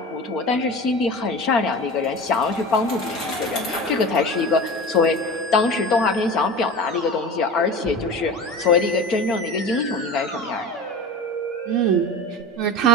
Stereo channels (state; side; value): normal; both; correlation 0.33